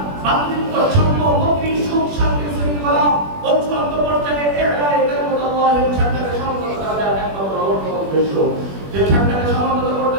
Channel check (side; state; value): left; late; 21 ms